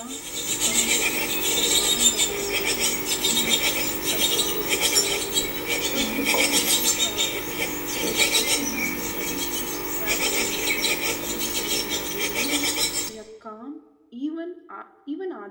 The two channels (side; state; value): both; identical; correlation 1.00